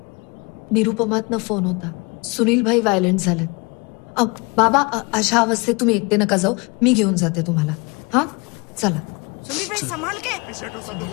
निरुपमातनं फोन होता. सुनील भाई व्हायलंट झालेत. बाबा, अशा अवस्थेत तुम्ही एकटे नका जाऊ, मी घेऊन जाते तुम्हाला. हा चला. सुनील भाई संभाल के.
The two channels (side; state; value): right; quieter; 28.2 dB